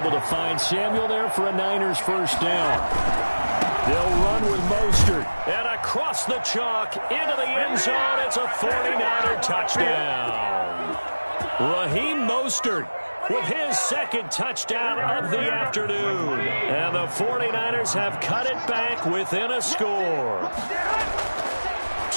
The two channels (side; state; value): both; inverted; correlation -1.00